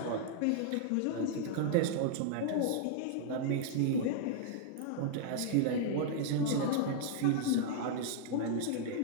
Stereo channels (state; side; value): different; both; correlation -0.01